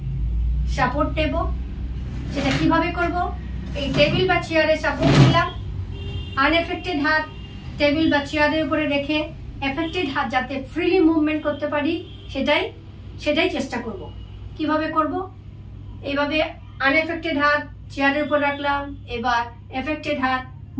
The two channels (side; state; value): both; identical; correlation 1.00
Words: সাপোর্ট নেব। সেটা কিভাবে করব, এই টেবিল বা চেয়ারের সাপোর্ট নিলাম, আনএফেক্টেড হাত টেবিল বা চেয়ারের উপরে রেখে এফেক্টেড হাত যাতে ফ্রিলি মুভমেন্ট করতে পারি সেটাই চেষ্টা করব। কিভাবে করব, এইভাবে আনএফেক্টেড হাত চেয়ারের উপর রাখলাম, এবার এফেক্টেড হাত